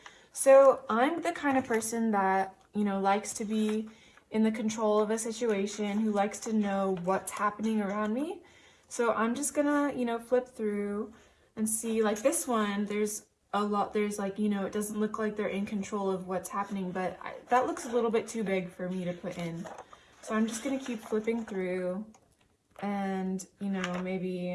So I'm the kind of person that, you know, likes to be in the control of a situation, who likes to know what's happening around me. So I'm just going to, you know, flip through and see, like this one, there's a lot, there's like, you know, it doesn't look like they're in control of what's happening, but that looks a little bit too big for me to put in. So I'm just gonna keep flipping through, and, you know, maybe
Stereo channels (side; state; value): both; identical; correlation 1.00